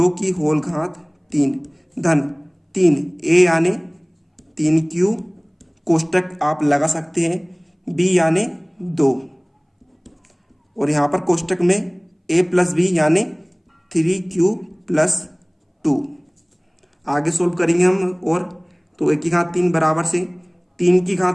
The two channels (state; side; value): identical; both; correlation 1.00